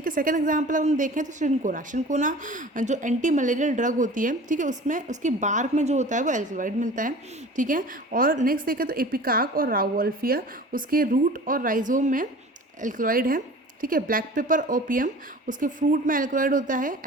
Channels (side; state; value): both; normal; correlation 0.41